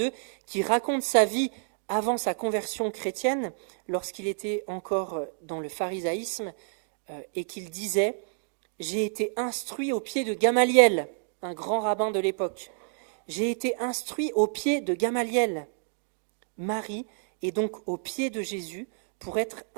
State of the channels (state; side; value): silent; left; digital silence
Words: qui raconte sa vie avant sa conversion chrétienne, lorsqu'il était encore dans le pharisaïsme, et qu'il disait « J'ai été instruit au pied de Gamaliel », un grand rabbin de l'époque. « J'ai été instruit au pied de Gamaliel ». Marie est donc au pied de Jésus pour être